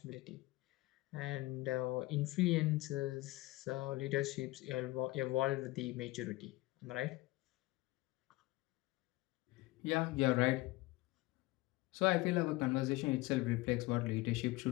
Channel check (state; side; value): quieter; right; 20.6 dB